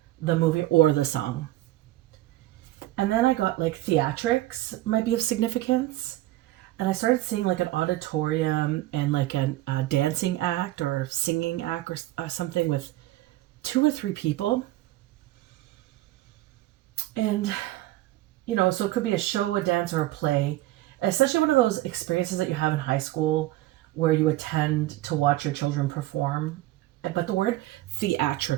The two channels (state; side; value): quieter; left; 16.4 dB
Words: the movie or the song. And then I got like theatrics might be of significance. And I started seeing like an auditorium and like a dancing act or singing act or something with 2 or 3 people. And, so it could be a show, a dance, or a play. Essentially one of those experiences that you have in high school where you attend to watch your children perform. But the word